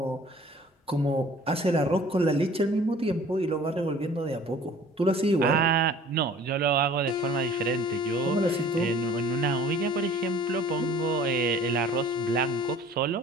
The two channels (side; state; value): both; normal; correlation 0.49